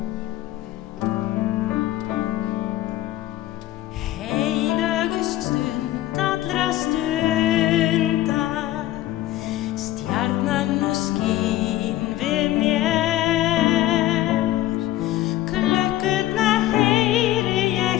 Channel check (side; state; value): right; quieter; 14.8 dB